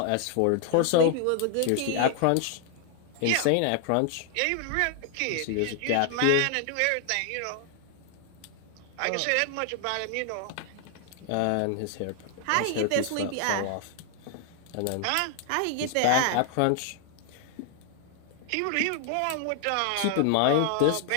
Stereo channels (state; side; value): different; both; correlation 0.00